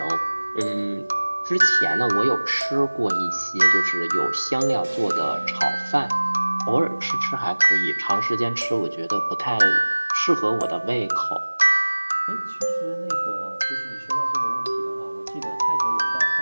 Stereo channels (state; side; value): inverted; both; correlation -1.00